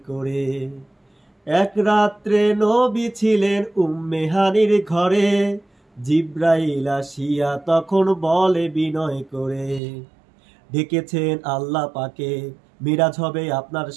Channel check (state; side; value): drops out; left; at 9.8 s